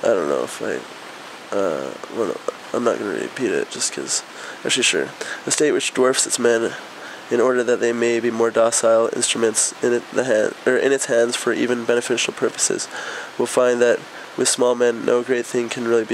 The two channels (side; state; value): both; identical; correlation 1.00